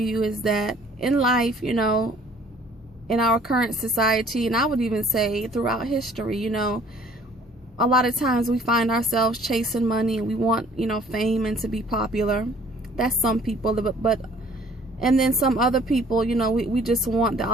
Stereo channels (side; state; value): both; normal; correlation 0.56